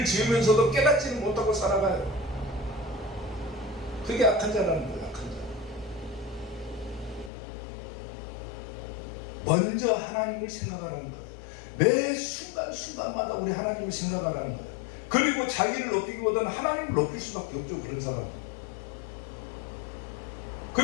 지으면서도 깨닫지는 못하고 살아가요. 그게 악한 자라는 거예요. 악한 자. 먼저 하나님을 생각하라는 거예요. 매 순간순간마다 우리 하나님을 생각하라는 거예요. 그리고 자기를 높이기보다는 하나님을 높일 수밖에 없죠. 그런 사람은.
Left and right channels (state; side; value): drops out; right; at 7.3 s